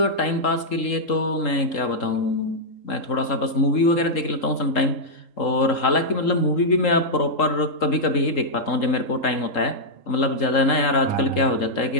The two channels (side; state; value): right; late; 3.8 ms